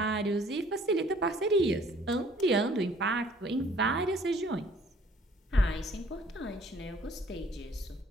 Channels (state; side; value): normal; both; correlation 0.57